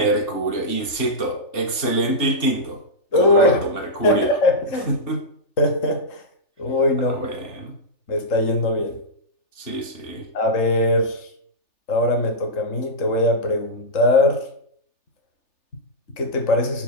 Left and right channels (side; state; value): right; late; 3.4 ms